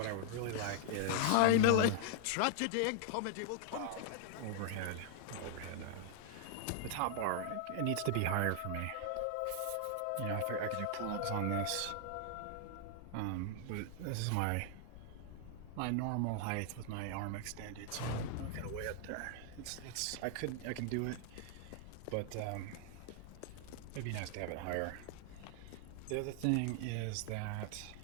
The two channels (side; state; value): both; different; correlation 0.00